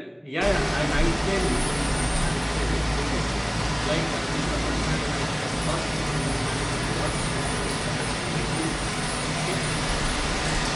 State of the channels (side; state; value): both; identical; correlation 1.00